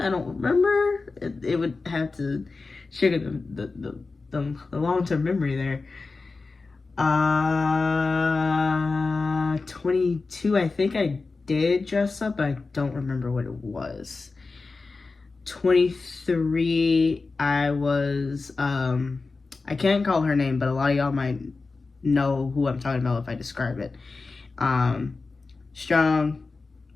I don't remember. It would have to trigger the long-term memory there. 22, I think I did dress up, but I don't remember what it was. 23, I was, I can't call her name, but a lot of y'all might know who I'm talking about if I describe it. Strong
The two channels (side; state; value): right; quieter; 3.9 dB